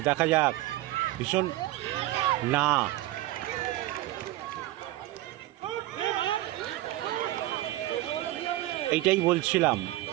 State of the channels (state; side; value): quieter; left; 16.3 dB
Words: দেখা যাক। ভীষণ না, এইটাই বলছিলাম,